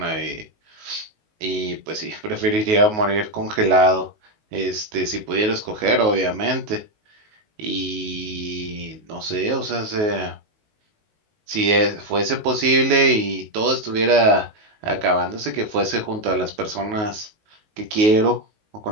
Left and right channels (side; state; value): left; late; 19 ms